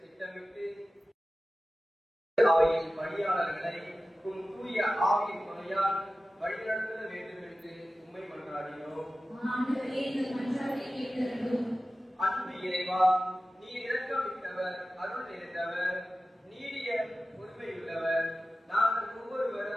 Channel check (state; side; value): normal; both; correlation 0.95